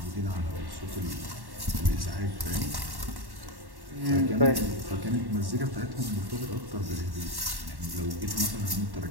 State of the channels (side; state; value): left; late; 1.1 ms